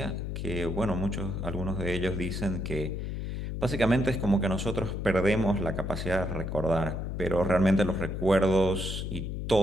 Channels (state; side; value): noise; left; hum, 4 dB below the sound